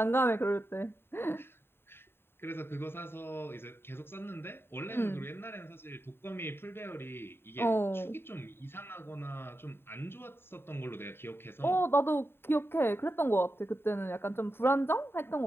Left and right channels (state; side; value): late; right; 0.11 ms